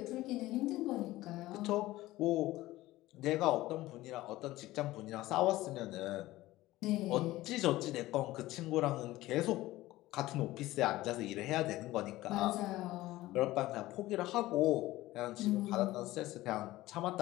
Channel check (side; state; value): right; quieter; 17.2 dB